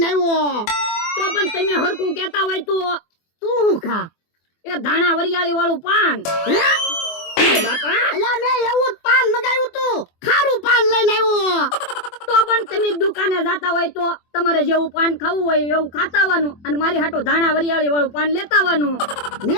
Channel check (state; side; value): late; right; 24 ms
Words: આવ્યો. તો પણ તમે હરખું કેતા હોય તો તું હું ખા? એ ધાણા વરિયાળી વાળું પાન. બાપા અલા મેં એવું જ પાન મગાવ્યું તું, ખારું પાન લઈને આવ્યો. તો પણ તમે દુકાને જાતા હોય તો તમારે જેવું પાન ખાવું હોય એવું ખાતા આવવાનું અને મારી હાટુ ધાણા વરિયાળી વાળું પાન લેતા આવવાનું.